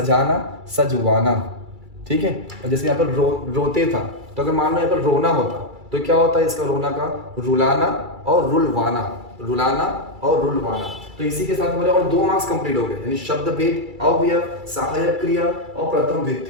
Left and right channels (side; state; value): left; late; 2.3 ms